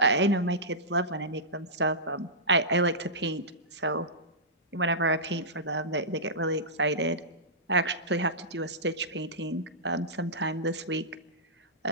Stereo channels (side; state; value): both; normal; correlation -0.16